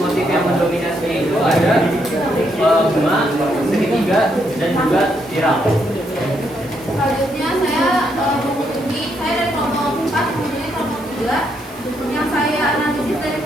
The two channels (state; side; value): noise; right; hiss, 24 dB below the sound